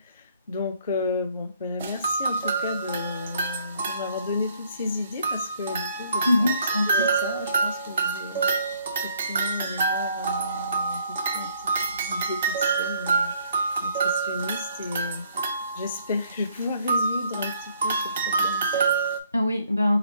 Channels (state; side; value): inverted; both; correlation -0.64